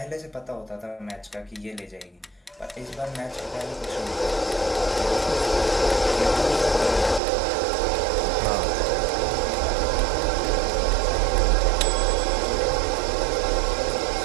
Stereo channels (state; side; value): drops out; left; at 7.2 s